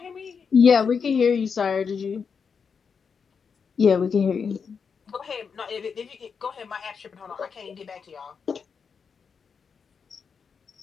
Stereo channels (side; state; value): right; quieter; 6.0 dB